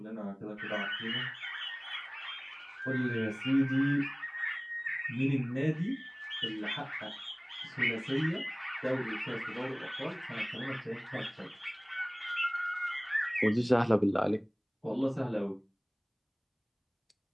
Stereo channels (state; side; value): identical; both; correlation 1.00